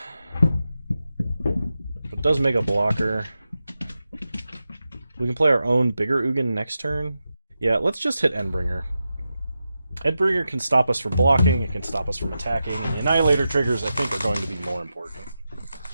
but does make a blocker. We can play our own bigger Ugin next turn. Yeah, let's just hit Endbringer. Endbringer can stop us from blocking, it can stop us from attacking, and the Annihilator triggers, I think, are going to be more important.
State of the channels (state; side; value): inverted; both; correlation -0.90